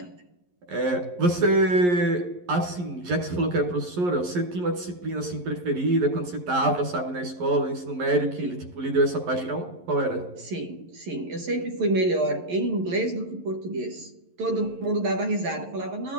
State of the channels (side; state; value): left; late; 11 ms